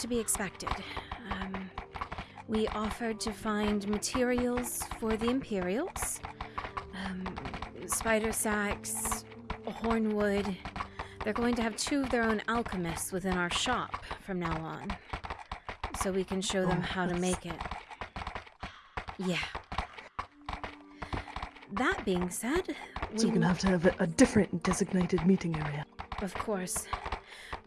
to be expected. We offered to find materials for the Imperials. Spider sacks, hornwood. They're going to have 2 of their own alchemists within our shop from now on. So we can show them how to make it. Yeah. That being said, So we're gonna have to have a different designated meeting area. Of course.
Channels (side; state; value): both; identical; correlation 1.00